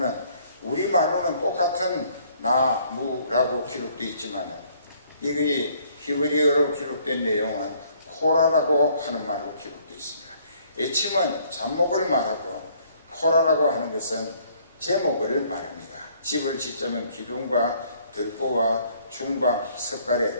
우리말로는 똑같은 나무라고 기록되어 있지만 이게 히브리어로 기록된 내용은 코라라고 하는 말로 기록되어 있습니다. 에침은 잡목을 말하고 코라라고 하는 것은 제목을 말합니다. 집을 짓자면 기둥과 들보와 중방, 석가래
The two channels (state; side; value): inverted; both; correlation -0.62